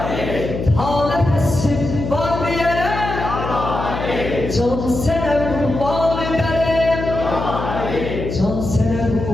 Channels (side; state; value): left; noise; hum, 5 dB below the sound